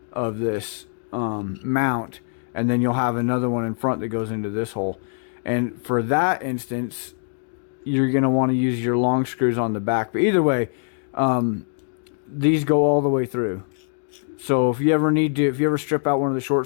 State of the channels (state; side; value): silent; right; digital silence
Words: of this mount. And then you'll have another one in front that goes into this hole. And for that instance, you're going to want to use your long screws on the back. But either way, these go all the way through. So if you ever strip out one of the